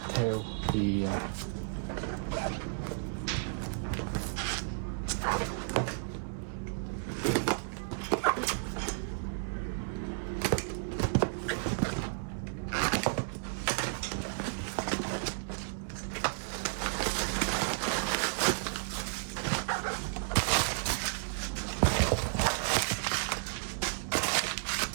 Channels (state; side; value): silent; left; digital silence